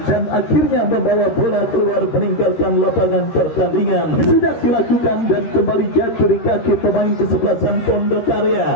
dan akhirnya membawa bola keluar meninggalkan lapangan pertandingan. Sudah dilakukan dan kembali jatuh di kaki pemain kesebelasan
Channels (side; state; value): right; late; 13 ms